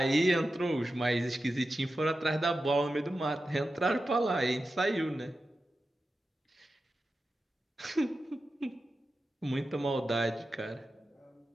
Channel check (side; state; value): both; normal; correlation 0.92